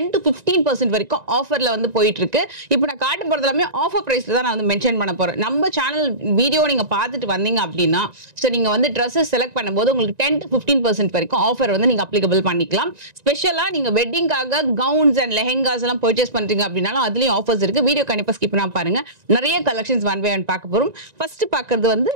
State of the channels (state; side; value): late; left; 1.9 ms